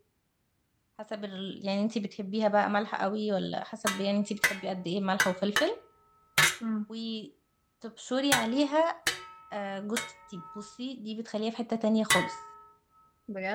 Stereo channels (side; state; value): both; identical; correlation 1.00